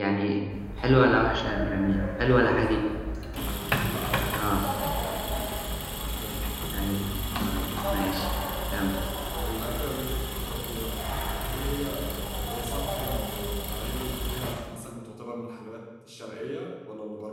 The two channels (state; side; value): identical; both; correlation 1.00